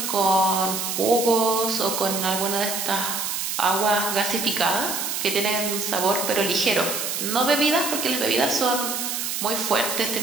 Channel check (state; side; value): noise; right; hiss, 2 dB below the sound